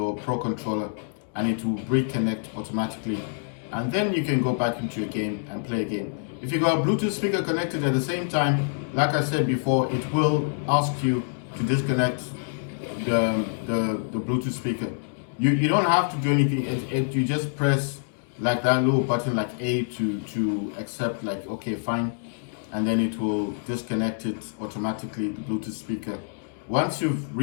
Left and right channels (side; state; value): right; silent; digital silence